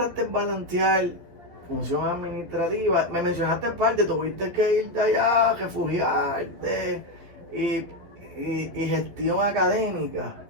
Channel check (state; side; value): late; left; 12 ms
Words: balancear función administrativa? Me mencionaste parte, tuviste que irte allá, refugiarte y gestión académica.